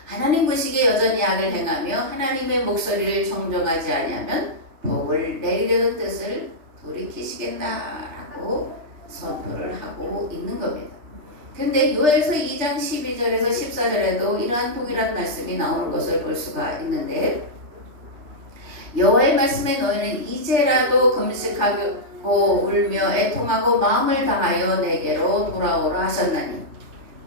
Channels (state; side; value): late; left; 3.3 ms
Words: 하나님 보시기에 여전히 악을 행하며 하나님의 목소리를 청종하지 아니하면 복을 내리려던 뜻을 돌이키시겠다라고 선포를 하고 있는 겁니다. 근데 요엘서 2장 12절에서 14절에도 이러한 동일한 말씀이 나오는 것을 볼 수가 있는데 여호와의 말씀에 너희는 이제라도 금식하고 울며 애통하고 마음을 다하여 내게로 돌아오라 하셨나니